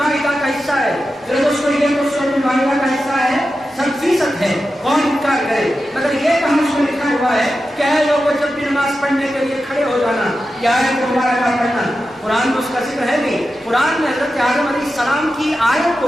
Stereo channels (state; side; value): normal; both; correlation 0.91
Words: کا حصہ ہے. میرے دوستو, یہ تو سورۃ المائدہ کا حصہ ہے, 100% ہے. کون انکار کرے؟ مگر یہ کہاں اس میں لکھا ہوا ہے کہ اے لوگوں جب بھی نماز پڑھنے کے لیے کھڑے ہو جانا, کیا ہے تمہارا کام پڑھنا. قرآن میں اس کا ذکر ہے نہیں. قرآن میں حضرت آدم علیہ السلام کی آیت